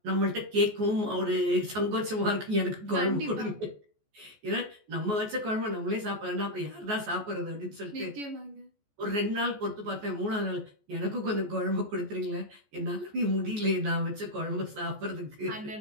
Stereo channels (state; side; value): late; left; 14 ms